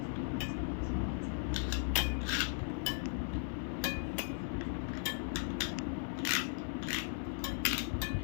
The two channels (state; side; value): silent; right; digital silence